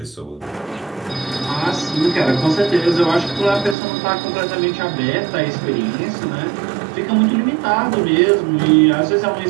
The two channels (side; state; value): left; drops out; at 3.8 s